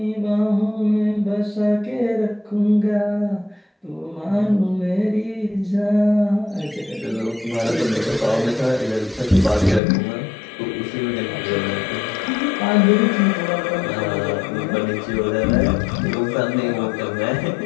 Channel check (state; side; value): drops out; right; at 9.8 s